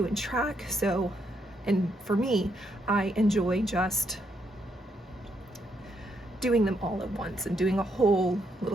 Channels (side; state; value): both; normal; correlation 0.76